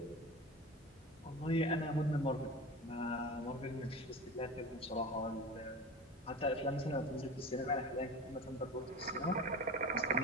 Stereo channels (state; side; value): normal; both; correlation 0.31